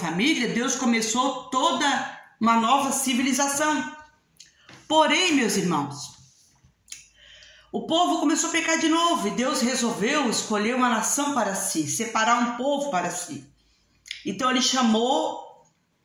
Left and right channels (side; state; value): both; identical; correlation 1.00